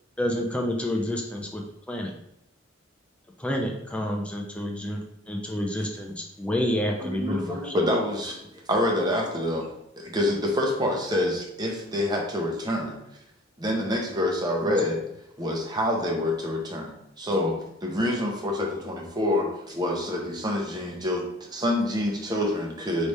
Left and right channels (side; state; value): both; normal; correlation 0.51